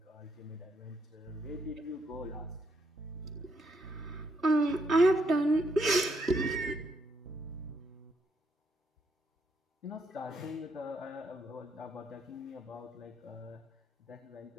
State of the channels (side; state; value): both; normal; correlation 0.75